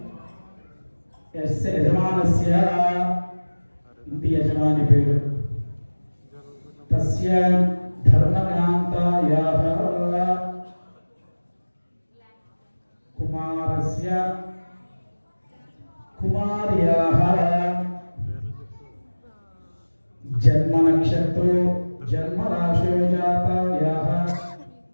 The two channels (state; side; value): inverted; both; correlation -1.00